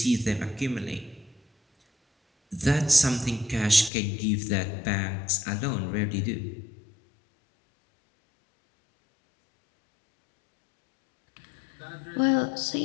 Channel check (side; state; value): right; drops out; at 3.9 s